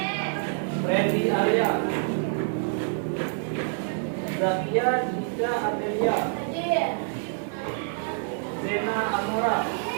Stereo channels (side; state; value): left; silent; 60 dB below the other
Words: Freddy Arya, Zakia Dika Adelia, Zena Amora.